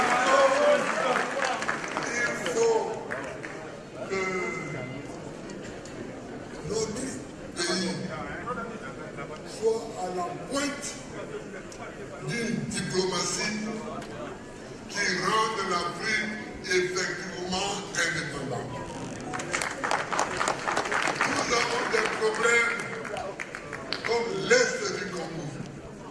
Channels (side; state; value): both; identical; correlation 1.00